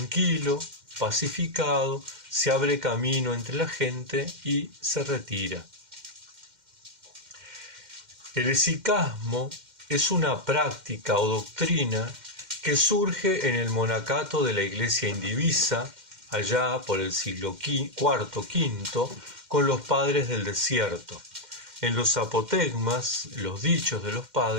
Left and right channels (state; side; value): late; left; 2.1 ms